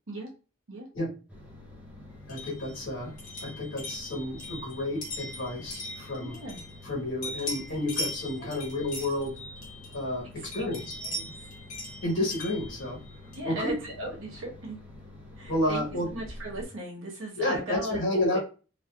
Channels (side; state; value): both; normal; correlation 0.08